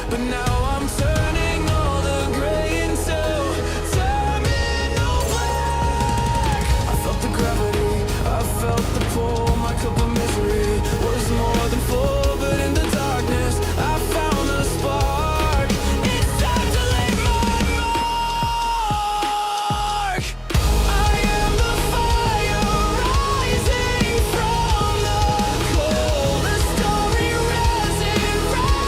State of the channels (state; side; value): identical; both; correlation 1.00